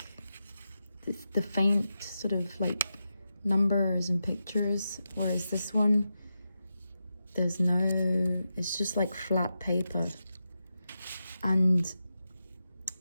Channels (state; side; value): inverted; both; correlation -0.89